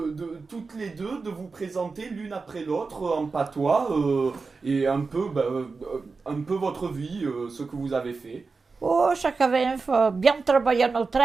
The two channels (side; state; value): left; quieter; 4.4 dB